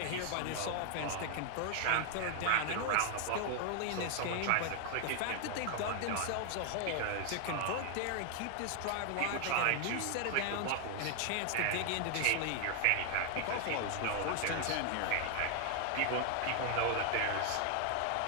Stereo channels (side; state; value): both; different; correlation 0.00